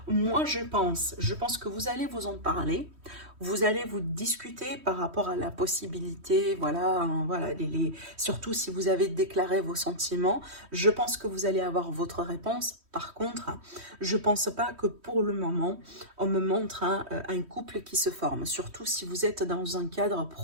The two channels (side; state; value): left; late; 3.1 ms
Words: moi je pense que vous allez vous en parler. Vous allez vous discuter par rapport à la possibilité, voilà, hein, voilà, surtout si vous avez déclaré vos sentiments, je pense que vous allez avoir votre réponse. Par contre, je pense pas que pour le moment, on me montre un couple qui se forme, surtout si vous êtes dans un cadre